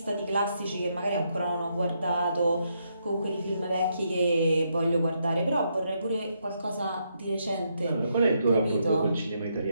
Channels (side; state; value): both; inverted; correlation -0.78